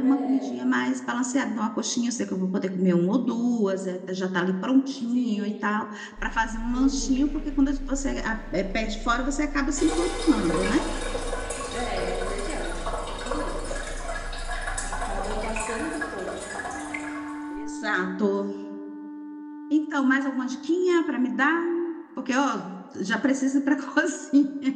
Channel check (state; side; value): identical; both; correlation 1.00